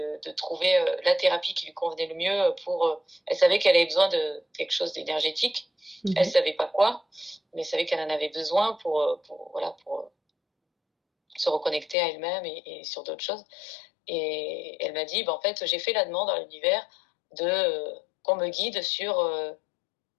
trouver la thérapie qui lui convenait le mieux elle savait qu'elle avait besoin de quelque chose d'énergétique. Elle Mmh. savait pas quoi, mais elle savait qu'elle en avait besoin voilà, pour se reconnecter à elle-même et sur d'autres choses. Et elle m'a dit, bah, en fait, j'ai fait la demande à l'univers qu'on me guide sur,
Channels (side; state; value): right; drops out; at 12.0 s